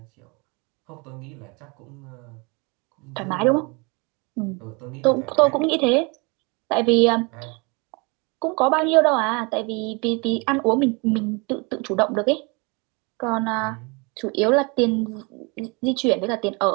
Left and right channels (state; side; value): quieter; left; 29.8 dB